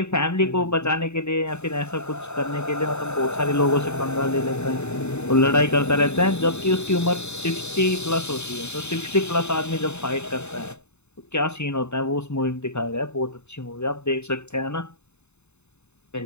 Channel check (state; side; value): late; right; 0.81 ms